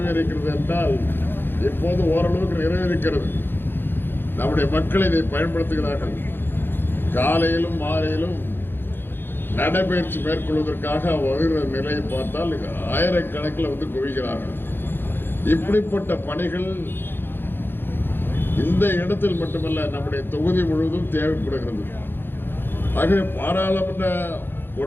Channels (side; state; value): right; late; 0.10 ms